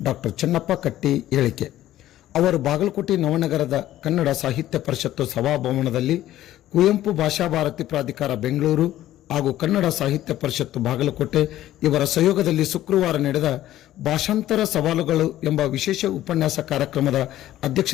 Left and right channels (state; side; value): quieter; right; 13.7 dB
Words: ಡಾಕ್ಟರ್ ಚೆನ್ನಪ್ಪ ಕಟ್ಟಿ ಹೇಳಿಕೆ. ಅವರು ಬಾಗಲಕೋಟೆ ನವನಗರದ ಕನ್ನಡ ಸಾಹಿತ್ಯ ಪರಿಷತ್ತು ಸಭಾಭವನದಲ್ಲಿ ಕುವೆಂಪು ಭಾಷಾ ಭಾರತಿ ಪ್ರಾಧಿಕಾರ ಬೆಂಗಳೂರು ಹಾಗೂ ಕನ್ನಡ ಸಾಹಿತ್ಯ ಪರಿಷತ್ತು ಬಾಗಲಕೋಟೆ ಇವರ ಸಹಯೋಗದಲ್ಲಿ ಶುಕ್ರವಾರ ನಡೆದ ಭಾಷಾಂತರ ಸವಾಲುಗಳು ಎಂಬ ವಿಶೇಷ ಉಪನ್ಯಾಸ ಕಾರ್ಯಕ್ರಮದ